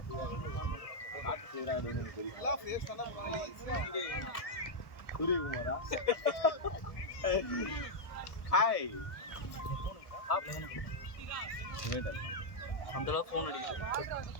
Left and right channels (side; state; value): right; late; 1.2 ms